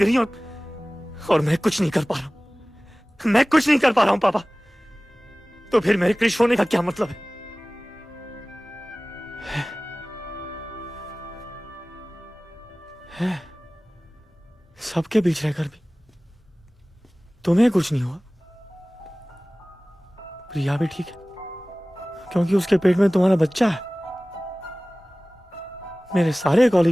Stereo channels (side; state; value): both; normal; correlation 0.98